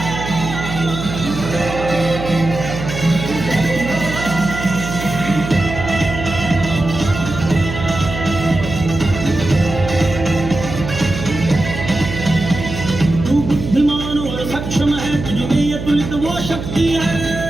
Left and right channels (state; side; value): noise; right; hum, 7 dB below the sound